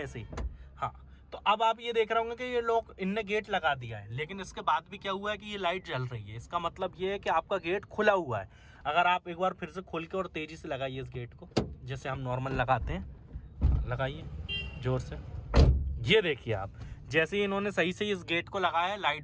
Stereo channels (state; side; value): identical; both; correlation 1.00